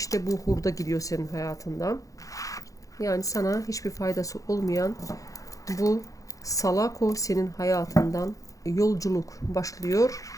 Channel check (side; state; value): right; late; 0.16 ms